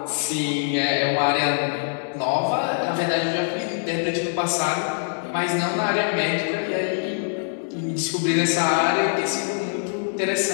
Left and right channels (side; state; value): right; silent; digital silence